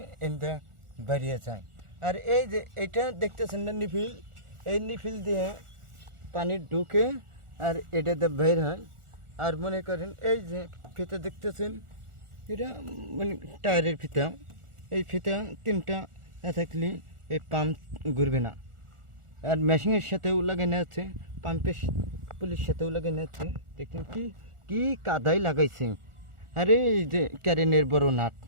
এতে বেরিয়ে যায়। আর এই যে এটা দেখতেছেন না নিফিল, এই নিফিল দিয়ে পানি ঢুকে আর এটাতে বের হয়। আর মনে করেন এই যে ফিতা দেখতেছেন, এটা মানে টায়ারের ফিতা, এই ফিতা তিনটা না থাকলে এই পাম্প ঘুরবে না। আর মেশিনের সাথেও লাগানো আছে, পাম্পের পুলিশ সাথেও লাগানো আছে। দেখুন কি কি কাদাই লাগাইছে। আরে এই যে ক্যারেনের বড় নাট,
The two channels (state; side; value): late; left; 1.4 ms